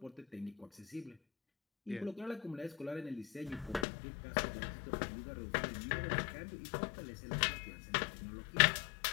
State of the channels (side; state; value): right; drops out; at 3.9 s